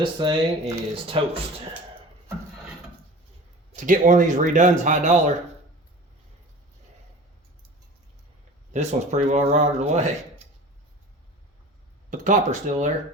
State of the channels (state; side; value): normal; both; correlation 0.39